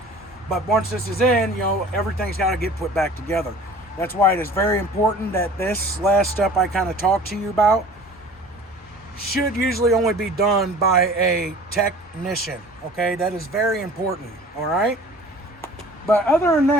But once this is in, everything's got to get put back together. That's why it is very important that this last step I kind of talked to you about should usually only be done by a technician, okay? That is very important, all right? But other than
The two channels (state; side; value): normal; both; correlation 0.45